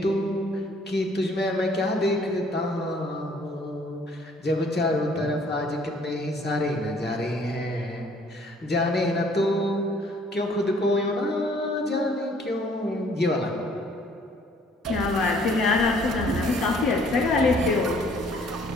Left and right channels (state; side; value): normal; both; correlation 0.59